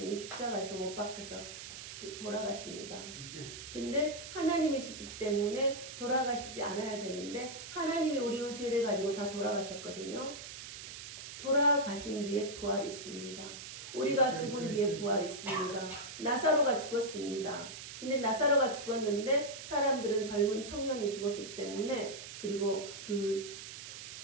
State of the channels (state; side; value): noise; right; hiss, 11 dB below the sound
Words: 십자가에서 못 박혀서 돌아가십니다. 근데 하나님이시기 때문에 돌아가시지 않아야 되는데 하나님이 우리의 죄를 가지고 다 돌아가셨거든요. 돌아가신 뒤에 부활이 있습니다. 우리가 죽은 뒤에 부활이 있습니다. 나사로가 죽었습니다. 근데 나사로가 죽었는데 사람들은 젊은 청년이 죽었기 때문에 그리고